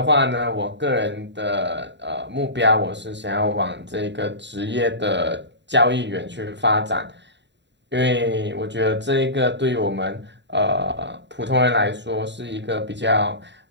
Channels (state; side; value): late; left; 0.52 ms